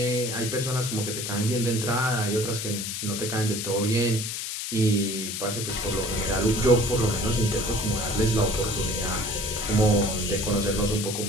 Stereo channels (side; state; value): left; noise; hiss, 4 dB below the sound